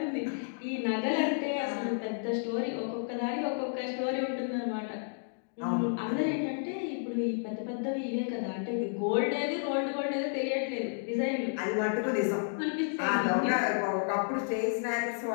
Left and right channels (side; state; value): right; silent; digital silence